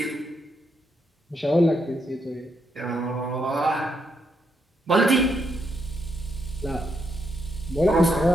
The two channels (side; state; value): both; normal; correlation 0.79